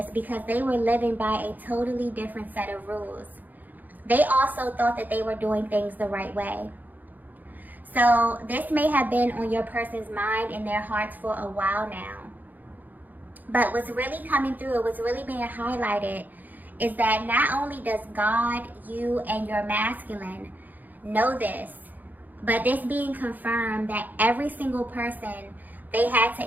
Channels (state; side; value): late; left; 0.084 ms